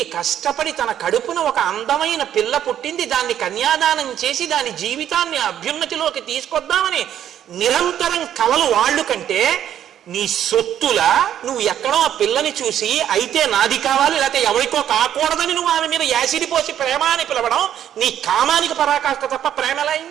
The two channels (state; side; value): quieter; left; 10.4 dB